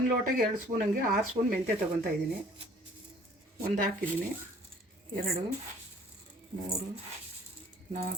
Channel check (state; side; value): normal; both; correlation 0.54